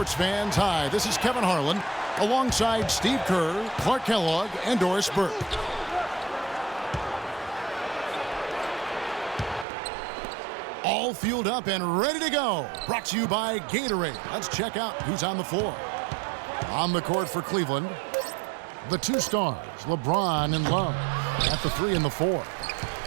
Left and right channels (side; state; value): left; drops out; at 9.7 s